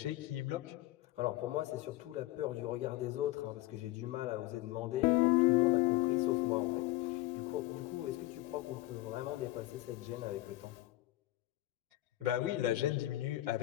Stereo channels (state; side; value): quieter; right; 17.1 dB